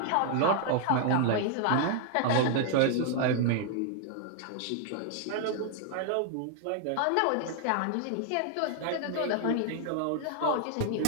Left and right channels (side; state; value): both; different; correlation 0.00